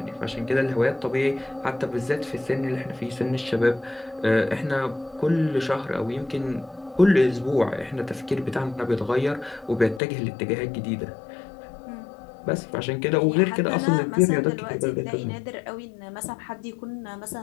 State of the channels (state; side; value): drops out; right; at 10.0 s